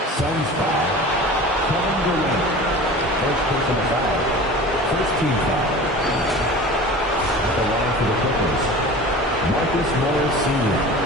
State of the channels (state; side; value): normal; both; correlation 0.38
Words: Suns foul. Kevin Durant. First personal foul. First team foul. At the line for the Clippers, Marcus Morris Sr.